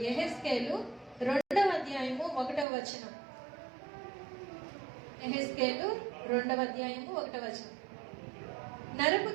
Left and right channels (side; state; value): left; drops out; at 2.7 s